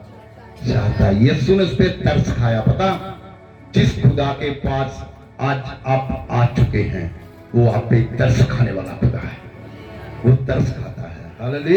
चाहता है? यीशु ने उस पर तरस खाया। पता, जिस खुदा के पास आज आप आ चुके हैं, वो आप पे तरस खाने वाला खुदा है, वो तरस खाता है।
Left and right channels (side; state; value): both; identical; correlation 1.00